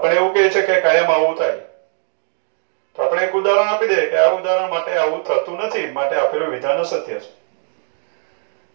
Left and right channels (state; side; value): silent; left; digital silence